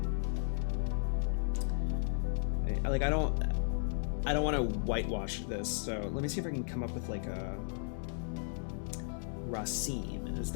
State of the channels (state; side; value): silent; right; digital silence